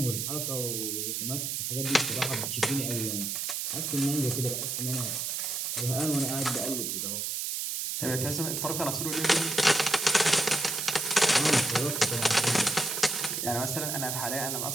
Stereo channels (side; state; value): right; noise; hiss, 2 dB below the sound